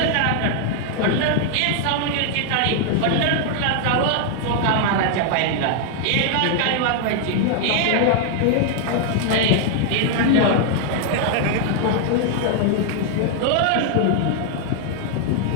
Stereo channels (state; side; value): different; both; correlation 0.00